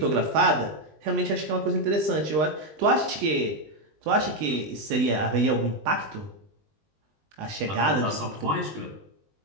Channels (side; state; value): left; late; 20 ms